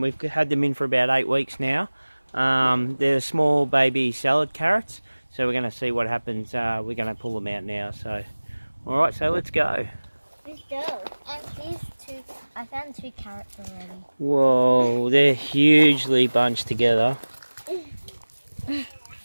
we've had them in for about 8 weeks now. They're small baby salad carrots, so we're going to see what happens. We're going to pull them out now. So, alright, so let's go. Let's go. And here's two. I found 2 carrots already. Whoa, they're hugely bunched together.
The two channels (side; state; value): both; inverted; correlation -1.00